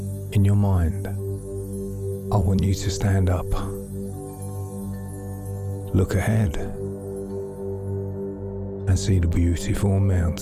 in your mind, I want you to stand up. Look ahead and see the beautiful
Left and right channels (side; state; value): both; identical; correlation 1.00